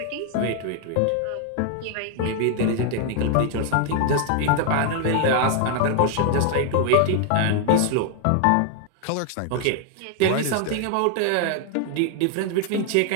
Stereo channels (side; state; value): both; different; correlation 0.00